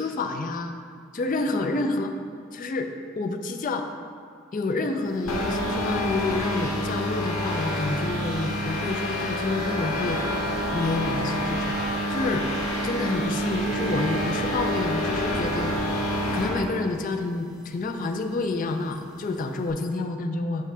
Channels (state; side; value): normal; both; correlation 0.49